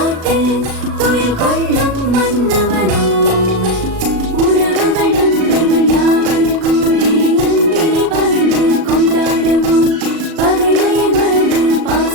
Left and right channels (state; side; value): late; left; 37 ms